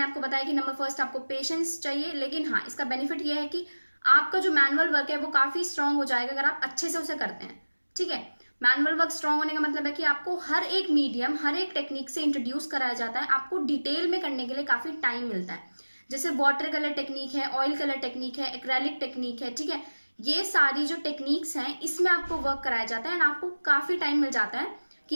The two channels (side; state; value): both; inverted; correlation -1.00